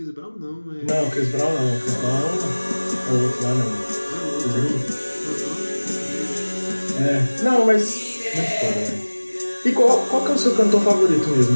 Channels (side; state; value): both; inverted; correlation -1.00